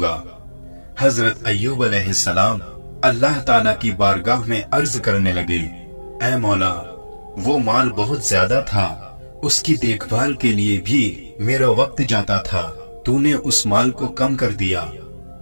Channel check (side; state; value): both; inverted; correlation -1.00